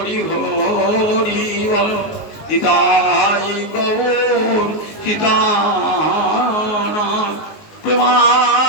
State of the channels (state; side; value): late; right; 19 ms